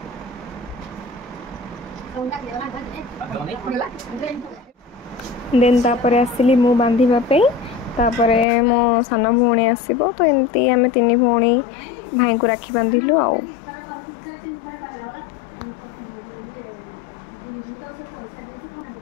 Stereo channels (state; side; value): drops out; right; at 8.5 s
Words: देन तापरे आसिली मु बांधिबा पे तापरे मो सान भौणी आसीबो तो एमती आमे तीन भौणी भाई को राखी बांधिलु आउ।